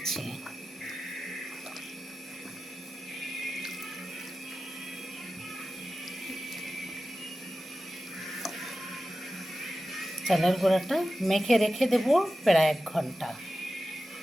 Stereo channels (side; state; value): both; normal; correlation 0.94